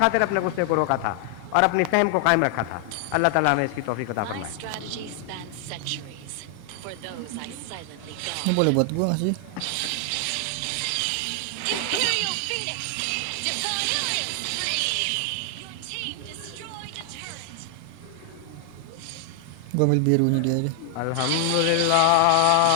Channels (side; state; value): both; different; correlation 0.00